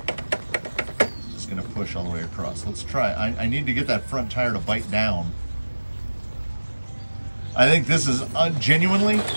push all the way across? Let's try. I need to get that front tire to bite down. I think this is genuinely,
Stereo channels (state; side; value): inverted; both; correlation -1.00